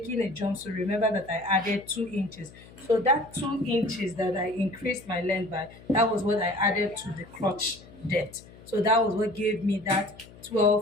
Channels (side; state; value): left; noise; hum, 21 dB below the sound